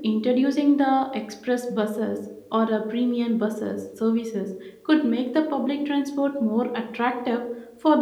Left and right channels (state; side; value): identical; both; correlation 1.00